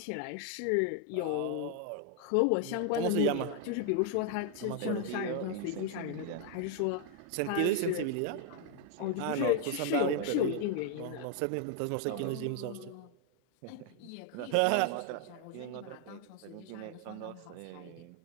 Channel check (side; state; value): both; different; correlation 0.00